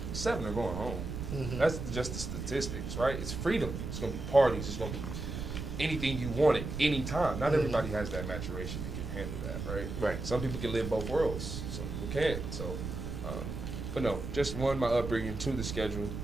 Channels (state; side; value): noise; right; rumble, 5 dB below the sound